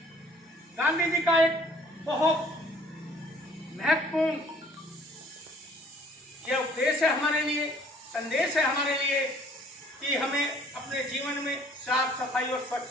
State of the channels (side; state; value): both; normal; correlation 0.56